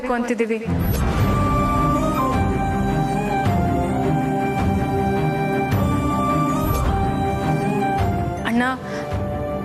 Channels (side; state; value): both; identical; correlation 1.00